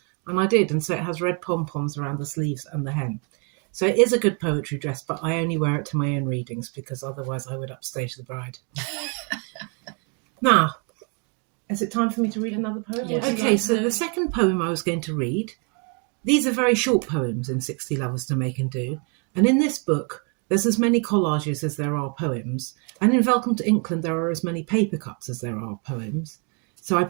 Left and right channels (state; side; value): quieter; left; 36.3 dB